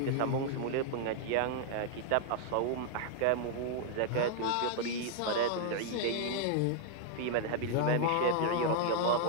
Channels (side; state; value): both; different; correlation -0.01